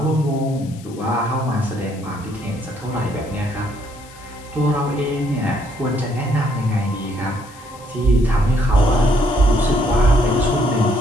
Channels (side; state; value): left; noise; hiss, 22 dB below the sound